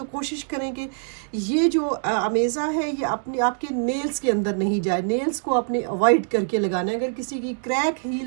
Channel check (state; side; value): silent; left; 59 dB below the other